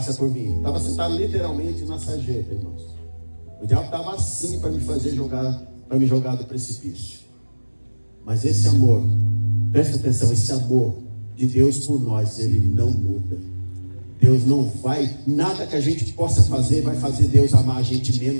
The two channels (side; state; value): both; inverted; correlation -1.00